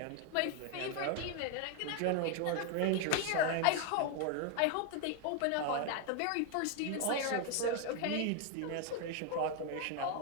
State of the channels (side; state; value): both; different; correlation 0.01